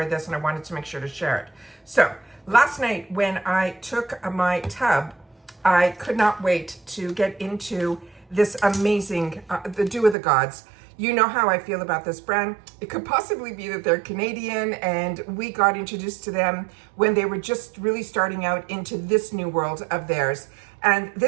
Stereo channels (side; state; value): left; drops out; at 10.2 s